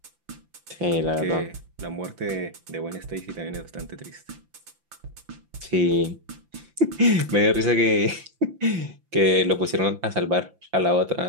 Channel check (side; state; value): left; late; 5.9 ms